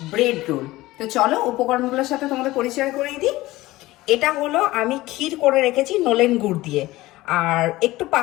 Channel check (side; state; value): right; quieter; 18.2 dB